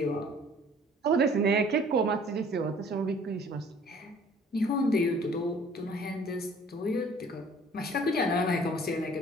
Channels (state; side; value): normal; both; correlation 0.53